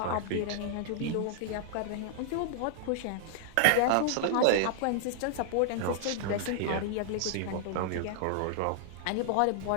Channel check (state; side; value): different; both; correlation -0.01